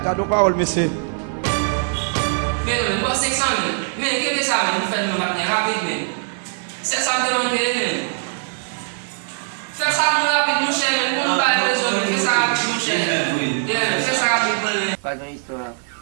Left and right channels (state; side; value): silent; left; 55 dB below the other